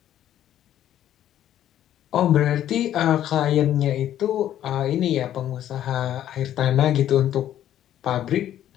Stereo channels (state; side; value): quieter; right; 11.5 dB